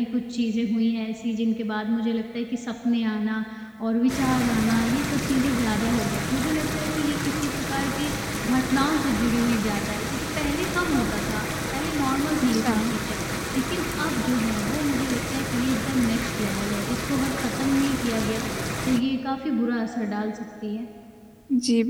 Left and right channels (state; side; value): identical; both; correlation 1.00